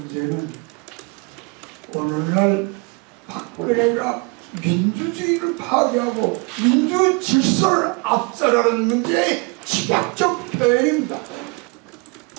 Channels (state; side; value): quieter; left; 30.0 dB